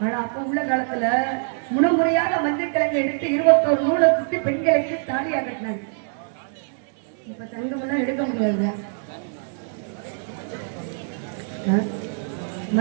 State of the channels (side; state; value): left; silent; 63 dB below the other